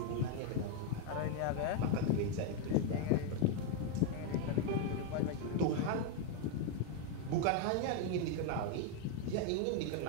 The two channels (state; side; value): different; both; correlation 0.01